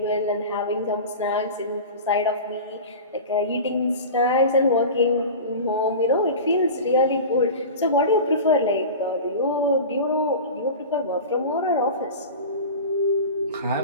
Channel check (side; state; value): both; inverted; correlation -0.32